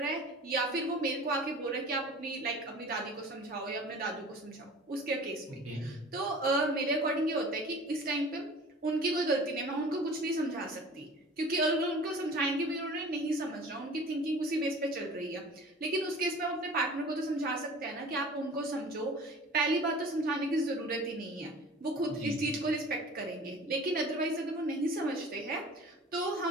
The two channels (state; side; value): normal; both; correlation 0.43